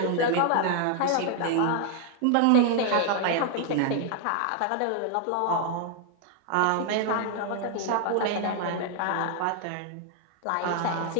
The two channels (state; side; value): different; both; correlation 0.00